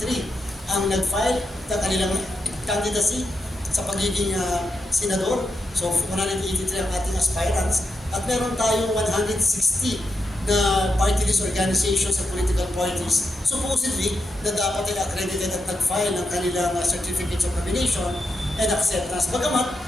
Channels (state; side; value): normal; both; correlation 0.85